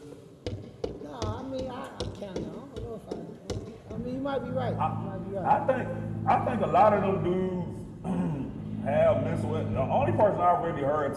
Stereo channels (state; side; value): identical; both; correlation 1.00